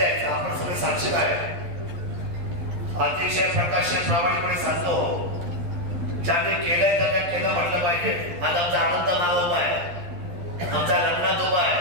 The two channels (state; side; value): late; left; 12 ms